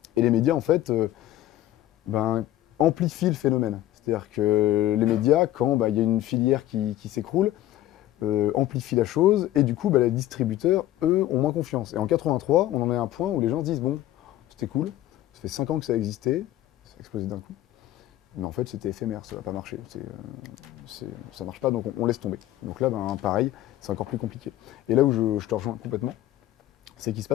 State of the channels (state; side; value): quieter; right; 14.1 dB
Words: Et les médias en fait amplifient le phénomène. C'est-à-dire que les médias, quand il y a une filière qui s'écroule, amplifient la chose, et du coup, les distributeurs, eux, ont moins confiance. Et en 83, on en est à un point où les gens se disent, bon, c'était cool, ça fait 5 ans que ça existait, ça a explosé d'un coup, mais en fait, c'était éphémère, ça va pas marcher, ça marche pas, donc on laisse tomber. Donc là, pareil, c'est encore plus compliqué. Et là où je te rejoins complètement, c'est qu'il se